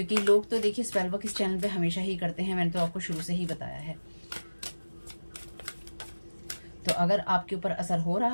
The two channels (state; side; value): inverted; both; correlation -1.00